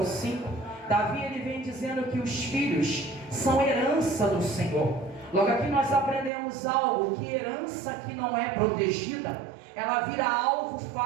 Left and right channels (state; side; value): drops out; left; at 6.3 s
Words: 5, Davi ele vem dizendo que os filhos são herança do Senhor. Logo aqui nós aprendemos algo, que herança que não é protegida, ela vira alvo